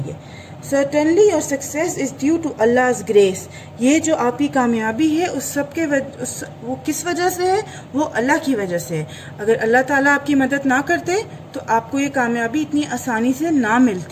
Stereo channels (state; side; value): identical; both; correlation 1.00